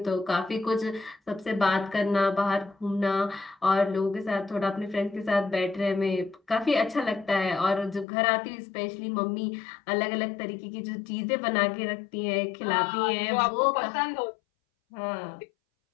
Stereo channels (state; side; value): drops out; right; at 8.1 s